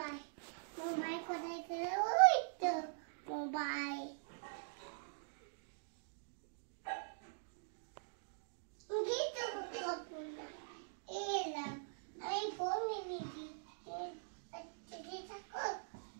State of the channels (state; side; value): silent; left; digital silence